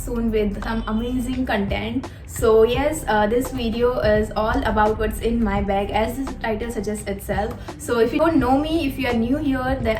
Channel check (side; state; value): both; identical; correlation 1.00